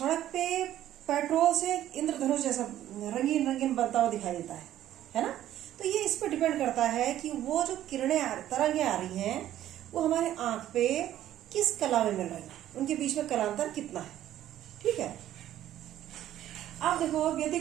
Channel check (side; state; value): left; quieter; 12.5 dB